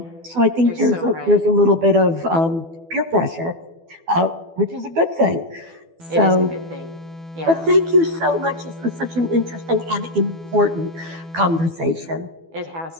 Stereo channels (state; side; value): late; left; 12 ms